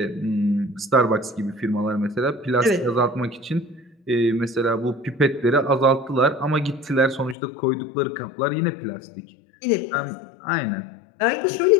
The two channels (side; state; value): right; drops out; at 7.4 s